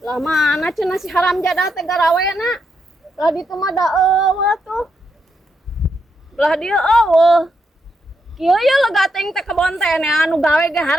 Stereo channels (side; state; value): both; normal; correlation 0.81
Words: Lah mana cenah si haram jadah teh garawena. Lah ditu mah da eueuh tuh. Lah dia eueuh. Kieu ya lega teh teh kebon teh anu gawe ge